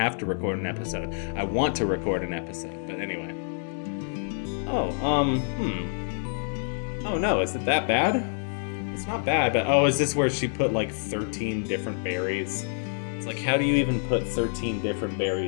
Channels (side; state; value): right; silent; digital silence